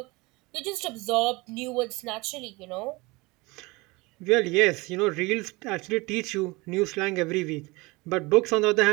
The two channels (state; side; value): quieter; left; 23.9 dB